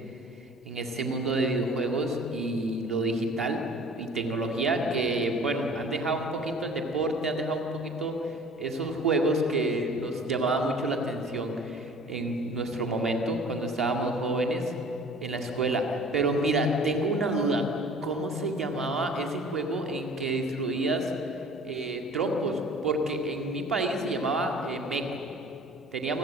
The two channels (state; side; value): normal; both; correlation 0.47